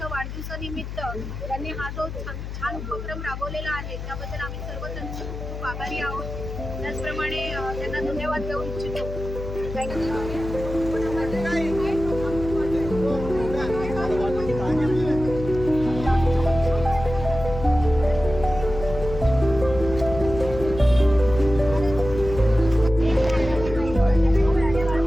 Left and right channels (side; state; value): left; noise; hum, 8 dB below the sound